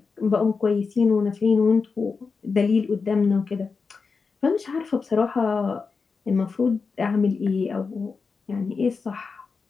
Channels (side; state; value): right; quieter; 4.9 dB